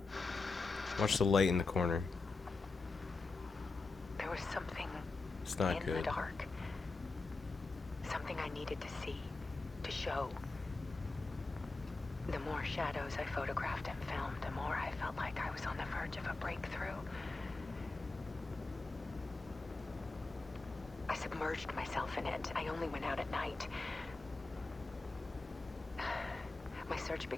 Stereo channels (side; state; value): right; quieter; 3.6 dB